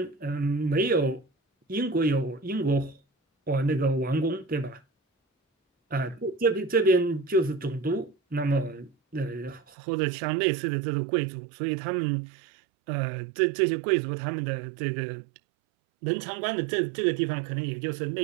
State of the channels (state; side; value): drops out; left; at 9.7 s